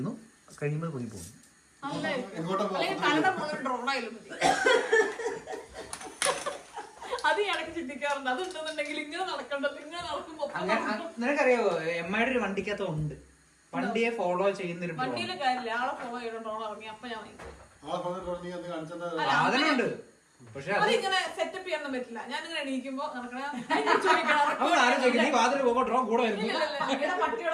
കഴിയുമ്പോൾ പൊങ്ങി പോകുന്നു. എങ്ങോട്ടാ അത് ഇടയ്ക്ക് ചിന്തിക്കാറുണ്ട്. അതുണ്ടെന്നുണ്ടെങ്കിൽ ഇങ്ങനെ നടക്കണ്ടത്, ഇങ്ങനെ നടക്കുമ്പോ നിനക്കറിയാവോ എമ്മയുടെ ഒരു വണ്ടിക്കകത്ത് ഉണ്ട്. വണ്ടിയെ ഫോളോ ചെയ്യുന്നൊരു വണ്ടിയിലെ കാര്യമില്ല, ആളെ ഫോളോ ചെയ്തോണ്ടോ ഇറങ്ങി അപ്പൊ ഞാൻ സാധനമുണ്ട്. പക്ഷെ അതിങ്ങനെ സെറ്റപ്പ് ചെയ്യാനൊന്നും പറ്റില്ല. ഞാനിങ്ങനെ എണീക്കുമ്പോ നടക്കണ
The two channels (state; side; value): identical; both; correlation 1.00